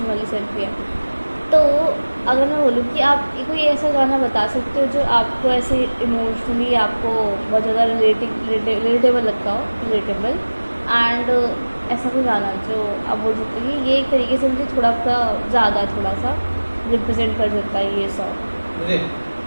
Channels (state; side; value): inverted; both; correlation -1.00